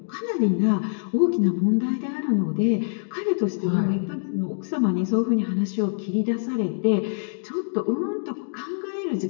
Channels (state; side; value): silent; right; digital silence